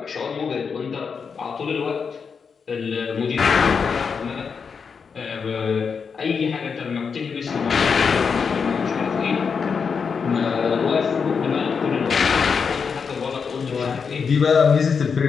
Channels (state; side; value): quieter; right; 5.9 dB